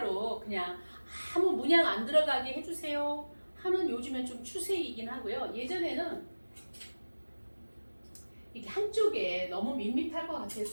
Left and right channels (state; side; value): inverted; both; correlation -1.00